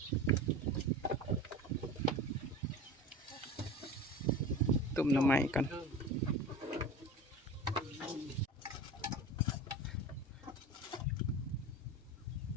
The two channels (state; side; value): normal; both; correlation 0.33